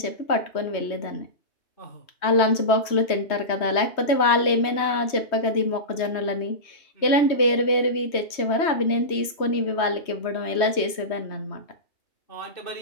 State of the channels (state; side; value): late; right; 3.2 ms